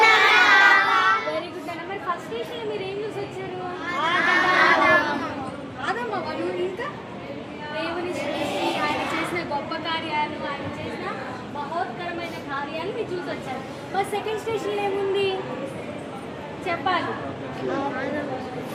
Very good అన్న. మరి ఫస్ట్ స్టేషన్ మీరు ఏం చూసి వచ్చారు? ఆదమ్మ వాడు. ఇంకా దేవుని సృష్టి, ఆయన చేసిన గొప్ప కార్యాలు, ఆయన చేసిన మహోత్కరమైన కార్యాలు మీరు చూసి వచ్చారు. మరి సెకండ్ స్టేషన్ ఏముంది చెప్పాలి.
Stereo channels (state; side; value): identical; both; correlation 1.00